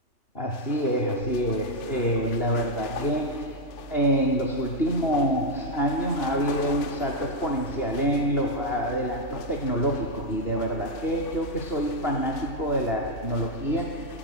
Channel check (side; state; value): right; late; 3.4 ms